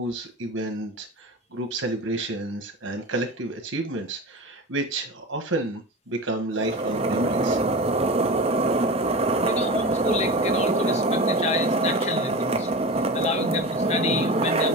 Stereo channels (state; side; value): normal; both; correlation 0.28